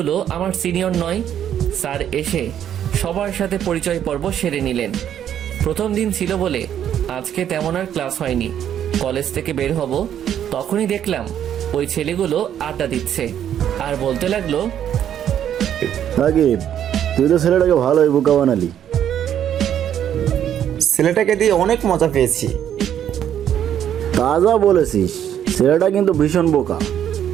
আমার সিনিয়র নয়। স্যার এসে সবার সাথে পরিচয় পর্ব সেরে নিলেন। প্রথম দিন ছিল বলে আজকে তেমন আর ক্লাস হয়নি। কলেজ থেকে বের হব তখনই দেখলাম ওই ছেলেগুলো আড্ডা দিচ্ছে আর বলতে লাগলো, রাকিব, তুই তো ছেলেটাকে ভালোই বোকা বানালি। ছেলেটাকে দিয়ে অনেক মজা পেয়েছি। তাজা বলেছিস, ছেলেটা কিন্তু ভীষণ বোকা।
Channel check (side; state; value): left; quieter; 10.0 dB